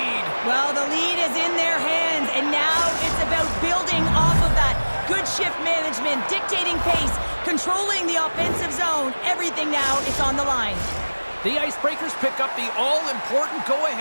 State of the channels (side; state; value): both; inverted; correlation -1.00